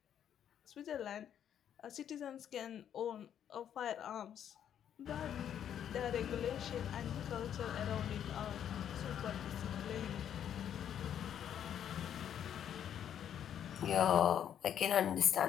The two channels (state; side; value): quieter; right; 9.5 dB